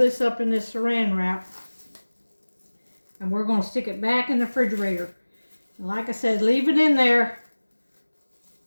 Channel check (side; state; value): both; inverted; correlation -1.00